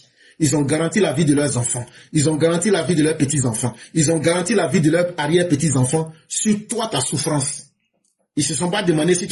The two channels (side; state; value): both; identical; correlation 1.00